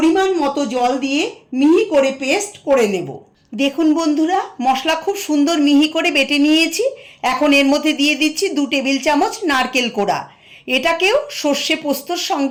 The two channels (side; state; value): both; identical; correlation 1.00